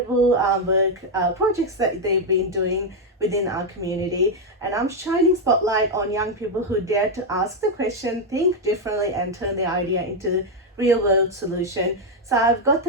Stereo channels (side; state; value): both; normal; correlation 0.03